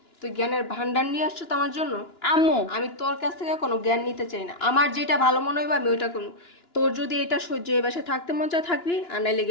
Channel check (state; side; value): late; right; 2.9 ms